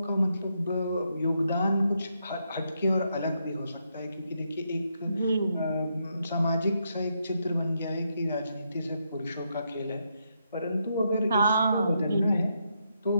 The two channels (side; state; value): both; inverted; correlation -0.79